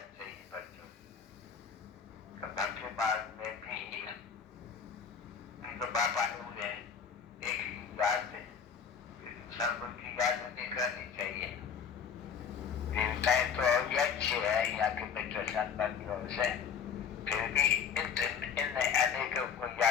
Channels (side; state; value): right; quieter; 6.8 dB